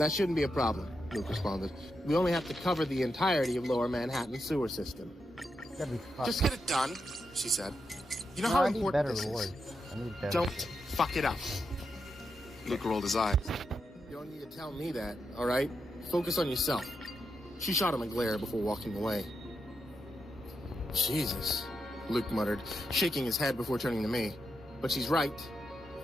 shouldn't be a problem, Luke responded. We only have to cover the entirety of Lower Manhattan sewer system. Just get it done, she said. You know how important this is. Don't fuck it up. Luke rolled his eyes. You don't need to tell me that, all right? Focus on yourself. She shot him a glare before walking away. Jesus, Luke muttered, shaking his head before turning to me. But she's right.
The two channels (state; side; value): normal; both; correlation 0.85